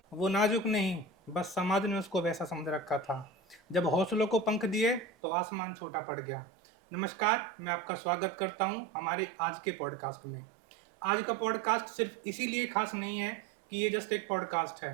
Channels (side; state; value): left; drops out; at 5.1 s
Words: वो नाजुक नहीं, बस समाज ने उसको वैसा समझ रखा था। जब हौसलों को पंख दिए तो आसमान छोटा पड़ गया। नमस्कार, मैं आपका स्वागत करता हूं हमारे आज के पॉडकास्ट में। आज का पॉडकास्ट सिर्फ इसीलिए खास नहीं है कि ये जस्ट एक पॉडकास्ट है।